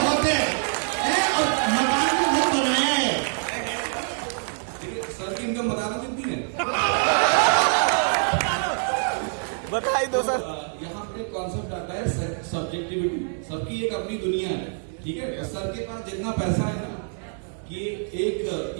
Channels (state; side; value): silent; left; 62 dB below the other